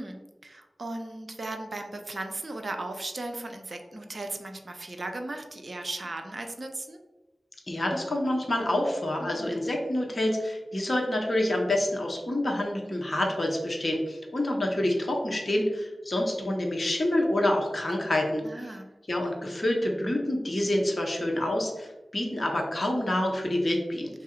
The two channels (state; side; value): normal; both; correlation 0.94